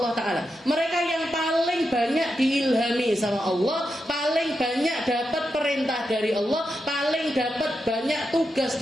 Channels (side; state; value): both; normal; correlation 0.87